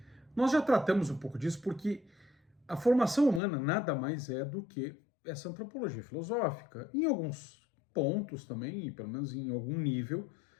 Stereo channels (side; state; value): right; drops out; at 3.4 s